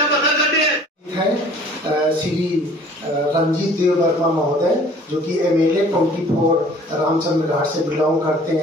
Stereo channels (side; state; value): both; normal; correlation 0.51